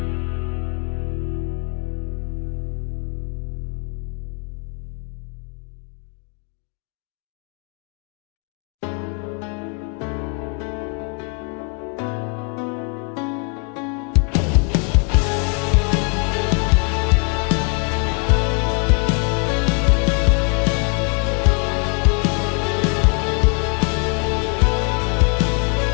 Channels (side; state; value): right; quieter; 37.6 dB